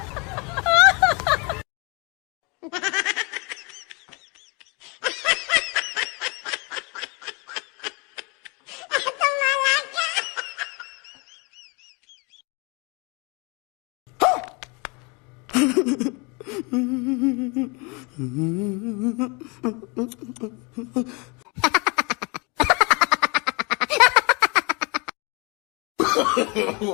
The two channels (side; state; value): right; quieter; 29.8 dB